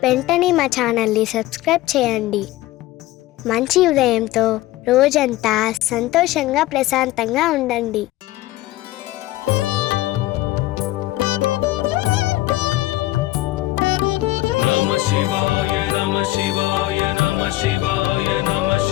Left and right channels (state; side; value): quieter; right; 17.0 dB